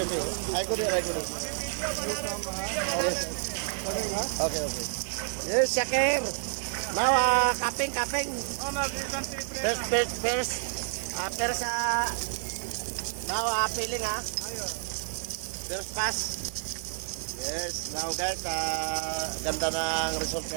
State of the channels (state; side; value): silent; left; 57 dB below the other